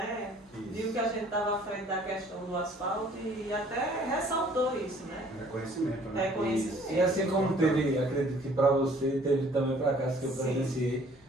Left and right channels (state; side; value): normal; both; correlation 0.56